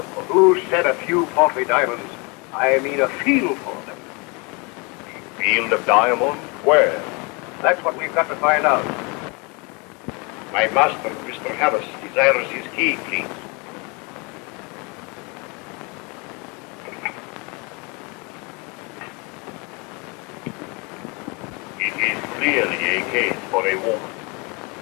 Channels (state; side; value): quieter; right; 29.9 dB